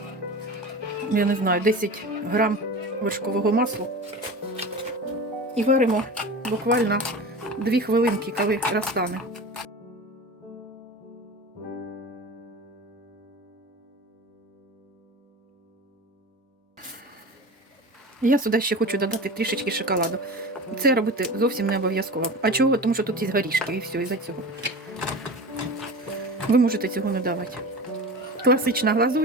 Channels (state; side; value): normal; both; correlation 0.32